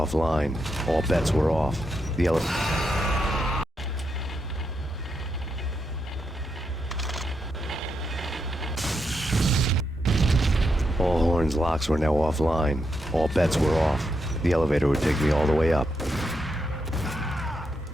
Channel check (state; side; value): normal; both; correlation 0.83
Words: All bets were off. The All Horn's locks were now offline. All bets were off. The elevator would take me all the way up.